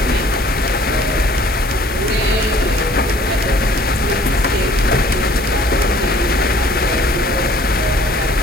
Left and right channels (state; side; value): normal; both; correlation 0.55